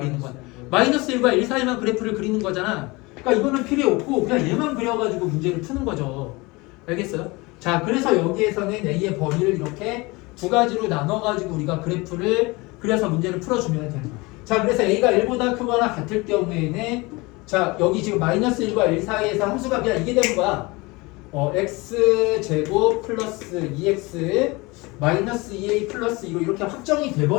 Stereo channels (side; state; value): right; quieter; 24.2 dB